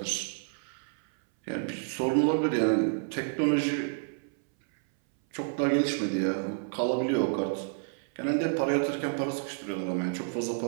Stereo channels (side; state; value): left; silent; 58 dB below the other